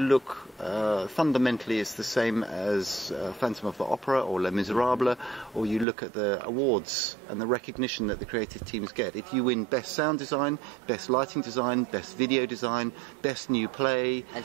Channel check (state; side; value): drops out; left; at 5.9 s